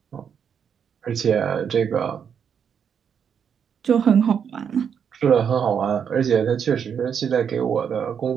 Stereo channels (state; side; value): quieter; left; 7.5 dB